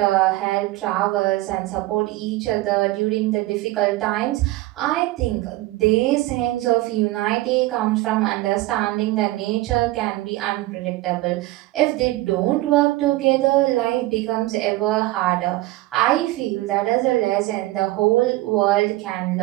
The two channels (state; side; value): quieter; left; 18.3 dB